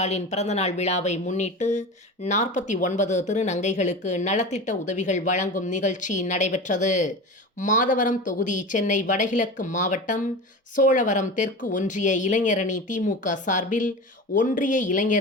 பிறந்தநாள் விழாவை முன்னிட்டு 49 திருநங்கைகளுக்கு நலத்திட்ட உதவிகள் வழங்கும் நிகழ்ச்சி நடைபெற்றது. மாதவரம் தொகுதி சென்னை வடகிழக்கு மாவட்டம் சோழவரம் தெற்கு ஒன்றிய இளைஞரணி திமுக சார்பில் ஒன்றிய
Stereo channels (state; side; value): normal; both; correlation 0.29